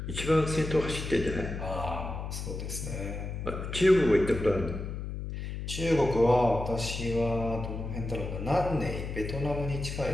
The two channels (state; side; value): noise; left; hum, 6 dB below the sound